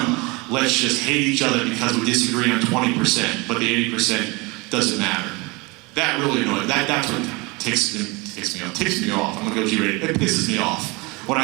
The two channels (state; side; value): quieter; left; 26.2 dB